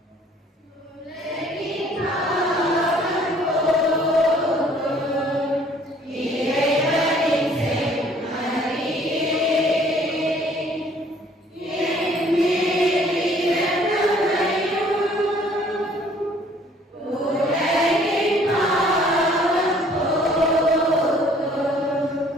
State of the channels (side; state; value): both; normal; correlation 0.57